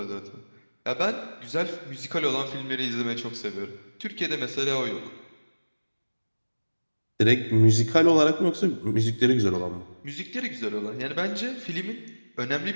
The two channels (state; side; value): inverted; both; correlation -1.00